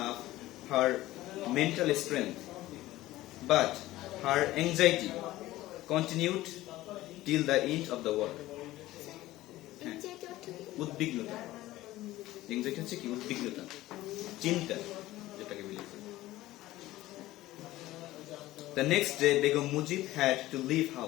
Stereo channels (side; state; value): right; quieter; 16.5 dB